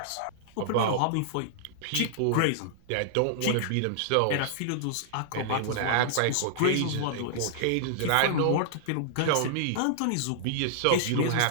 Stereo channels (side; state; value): both; different; correlation -0.01